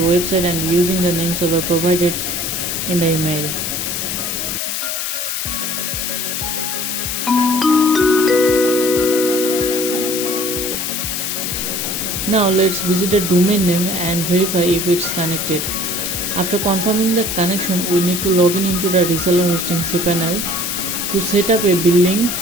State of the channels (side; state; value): left; noise; hiss, 2 dB below the sound